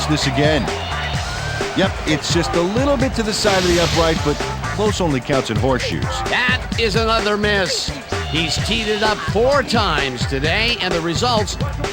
this again. Yep, it's just a little bit to the side of the upright, but close only counts in horseshoes. That is another miss. He's teed it up 4 times today, and the results,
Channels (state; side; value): identical; both; correlation 1.00